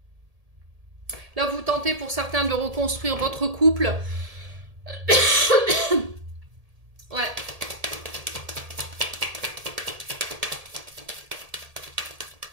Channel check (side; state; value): left; late; 1.8 ms